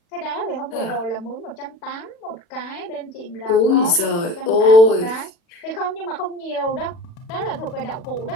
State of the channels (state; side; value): late; right; 40 ms